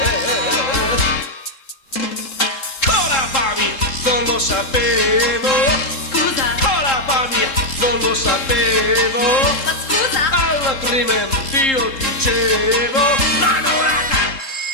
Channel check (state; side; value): late; right; 3.7 ms